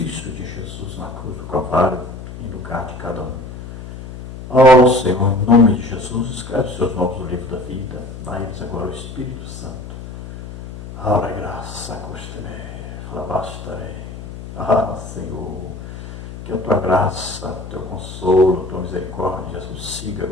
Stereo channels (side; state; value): left; noise; hum, 11 dB below the sound